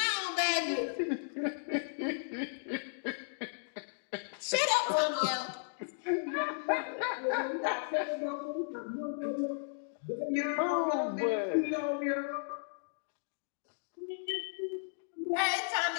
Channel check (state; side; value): silent; right; digital silence